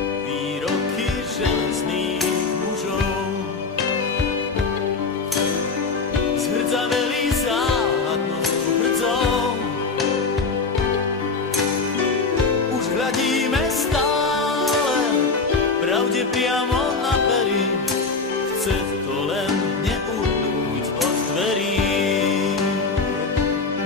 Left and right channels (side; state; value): right; quieter; 4.4 dB